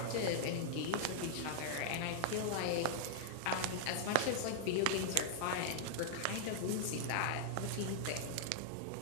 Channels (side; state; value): both; different; correlation -0.01